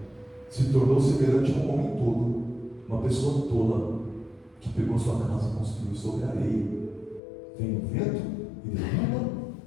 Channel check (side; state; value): right; drops out; at 7.2 s